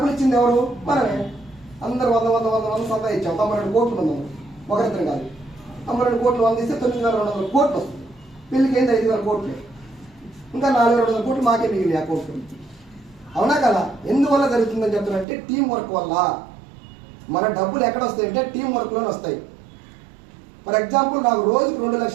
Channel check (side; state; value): left; drops out; at 15.2 s